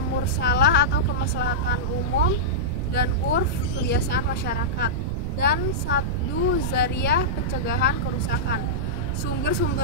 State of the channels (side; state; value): right; noise; rumble, 3 dB below the sound